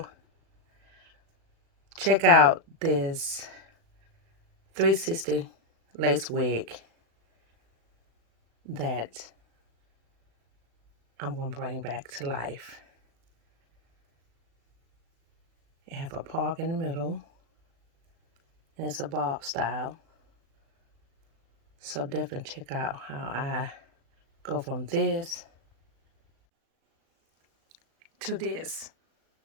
check out this 360 lace wig that I'm going to bring back to life. It have a park in the middle, and it's a bob style. So definitely check out how I go from this to this.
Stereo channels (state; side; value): late; left; 36 ms